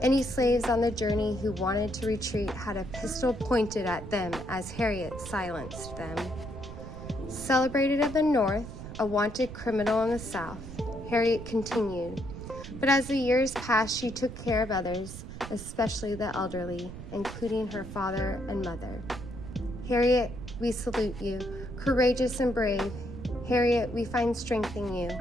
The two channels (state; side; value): noise; right; rumble, 11 dB below the sound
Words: slaves on the journey who wanted to retreat had a pistol pointed at them as Harriet silenced them. Celebrated in the north, a wanted criminal in the south, Harriet continued. But as the years passed, she took care of others, especially the elderly, including her father and mother. Harriet, we salute you, courageous and brave. Harriet, we find strength in you,